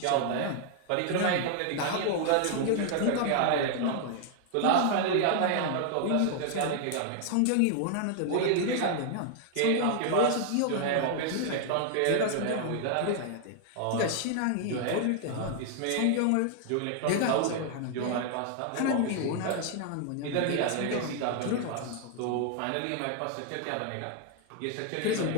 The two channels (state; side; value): different; both; correlation 0.00